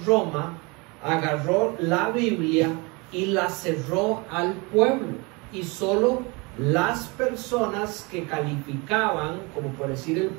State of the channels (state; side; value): quieter; left; 27.8 dB